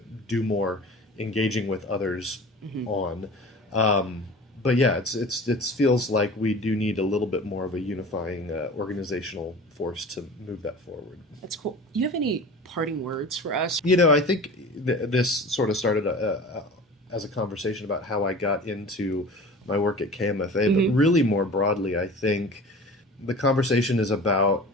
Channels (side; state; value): both; normal; correlation 0.38